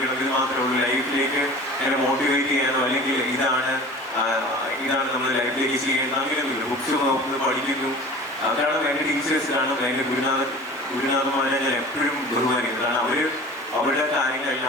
ഇത് മാത്രമേ ഉള്ളൂ. ലൈഫിലേക്ക് എന്നെ മോട്ടിവേറ്റ് ചെയ്യാനോ അല്ലെങ്കിൽ ഇതാണ് നമ്മൾ ലൈഫിലേക്ക് ചെയ്യേണ്ടത് അങ്ങനെയൊന്നുമില്ല. ബുക്സ് നോക്കുന്നു, പഠിക്കുന്നു. അതാണ് എൻ്റെ ടീച്ചേഴ്സിലാണ് എൻ്റെ ഗുരുനാഥന്മാരെ ഞാൻ എപ്പോഴും ബഹുമാനിക്കുന്നത്. കാരണം അവരുടെ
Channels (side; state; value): both; normal; correlation 0.40